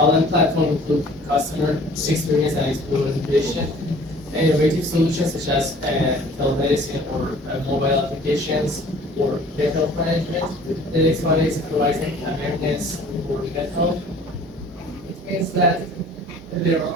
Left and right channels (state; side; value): normal; both; correlation 0.50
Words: platform, improve customer experience and exploration. Innovative solutions such as telemedicine or mobile applications or health management. The next one is providing awareness for health. It means that there are